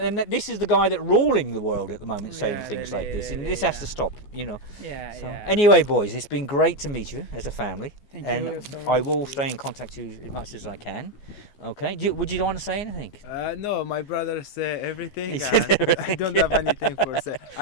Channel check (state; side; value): late; right; 14 ms